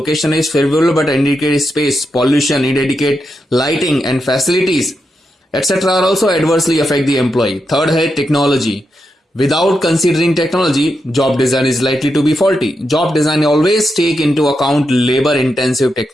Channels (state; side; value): normal; both; correlation 0.85